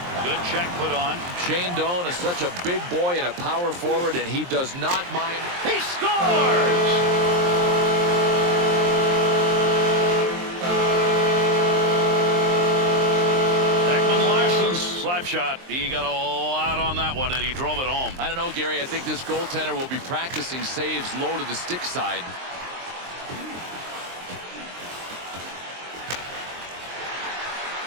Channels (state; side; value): late; left; 23 ms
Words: Good check put on. Shane Doan is such a big boy and a power forward, and he does not mind. He scores! Slap shot. He got a lot on that one, and he drove it home. I don't know, Gary. I think this goaltender will be practicing saves low to the stick side.